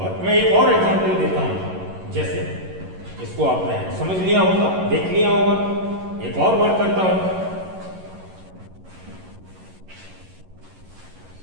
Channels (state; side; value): late; left; 11 ms